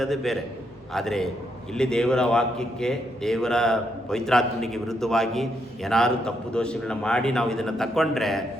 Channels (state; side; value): normal; both; correlation 0.78